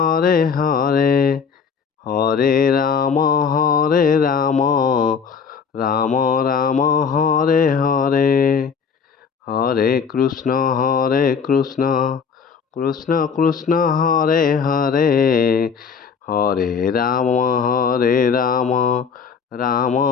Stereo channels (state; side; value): quieter; right; 6.2 dB